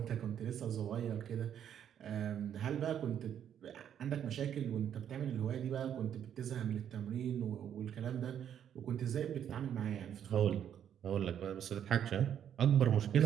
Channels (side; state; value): left; quieter; 9.4 dB